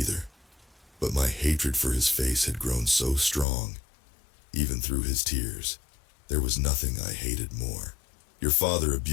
but my hatred for his face had grown so strong. Even through his tears, there was nothing I hated more. Your father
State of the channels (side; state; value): right; drops out; at 3.5 s